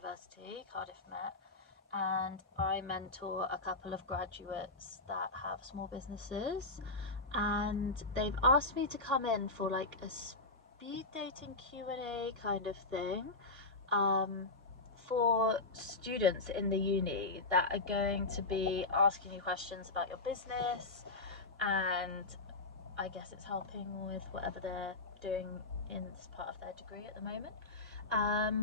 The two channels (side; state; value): right; quieter; 3.2 dB